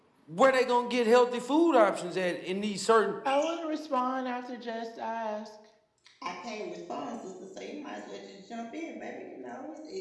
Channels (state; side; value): identical; both; correlation 1.00